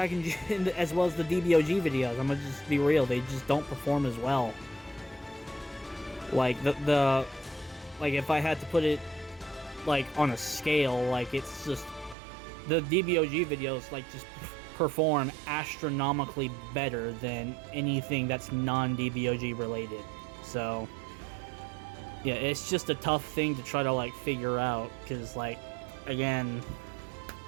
as well as the DBOG videos. I'm gonna just be real, they just don't perform as well. Like, like, if I had to put it, like, on a scale, like, it's just, the DBOG videos, like, just perform astronomically better than anything that's non-DBOG related. So, yeah, it's just a tough thing to try to, like, figure out, because, like, again,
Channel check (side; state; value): left; drops out; at 12.2 s